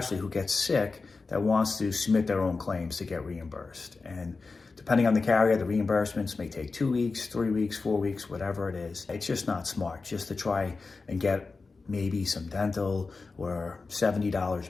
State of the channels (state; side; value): quieter; right; 4.1 dB